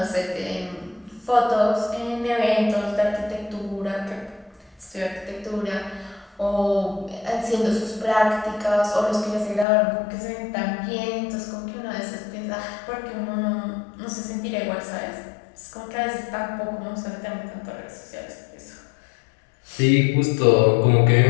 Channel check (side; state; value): right; drops out; at 9.7 s